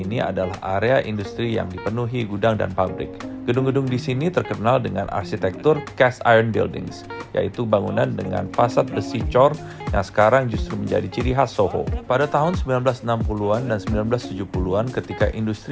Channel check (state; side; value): identical; both; correlation 1.00